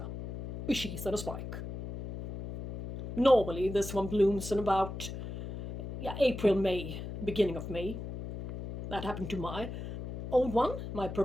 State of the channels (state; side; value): noise; left; hum, 8 dB below the sound